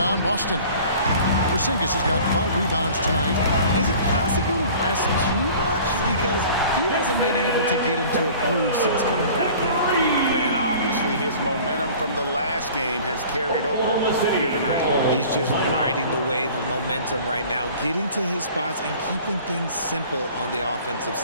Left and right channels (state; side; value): inverted; both; correlation -0.46